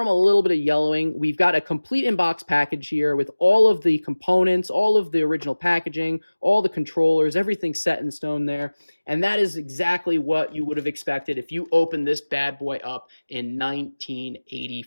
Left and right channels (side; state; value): both; inverted; correlation -1.00